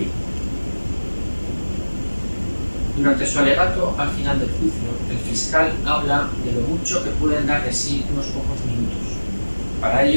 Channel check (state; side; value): inverted; both; correlation -1.00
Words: Durante su alegato al final del juicio, el fiscal habla de lo mucho que pueden dar de sí unos pocos minutos. Para